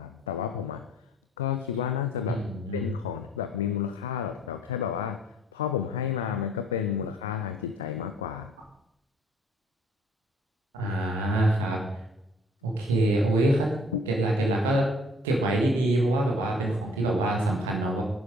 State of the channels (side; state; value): both; normal; correlation 0.57